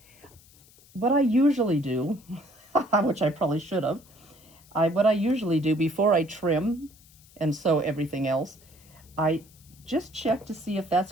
What I usually do, which I probably should have, what I usually do before I trim and sew everything else, I just check to see if that's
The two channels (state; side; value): noise; left; hiss, 26 dB below the sound